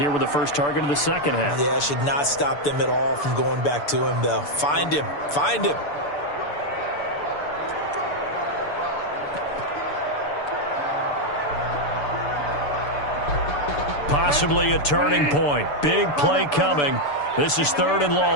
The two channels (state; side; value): late; right; 6.9 ms